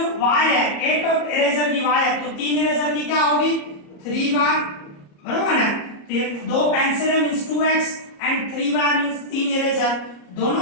y है, एक इरेजर की y है, तो 3 इरेजर की क्या होगी 3y, बरोबर है। तो ये 2 पेंसिल है means 2x and 3y means 3 eraser,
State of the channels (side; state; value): right; late; 34 ms